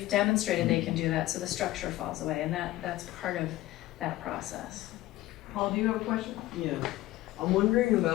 demonstrated they can do that, so the structure falls away, and that's part of that process. Paul, do you have a question? Yeah. I'm wondering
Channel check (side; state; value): right; quieter; 16.5 dB